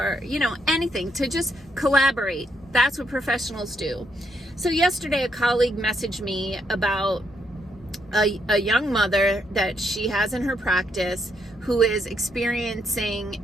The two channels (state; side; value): normal; both; correlation 0.77